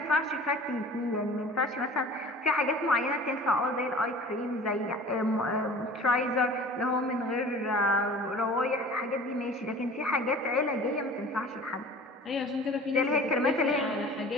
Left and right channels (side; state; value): both; normal; correlation 0.43